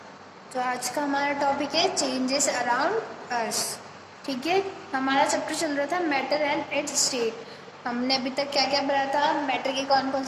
तो आज का हमारा टॉपिक है चेंजेस अराउंड अस। ठीक है, हमारा चैप्टर चल रहा था मैटर एंड इट्स स्टेट। हमने अभी तक क्या क्या पढ़ा था, मैटर की कौन कौन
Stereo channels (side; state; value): both; identical; correlation 1.00